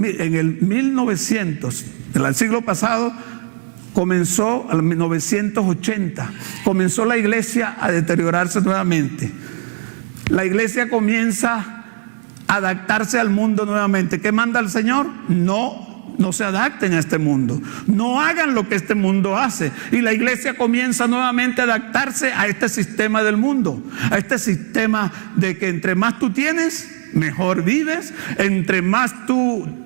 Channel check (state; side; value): silent; left; digital silence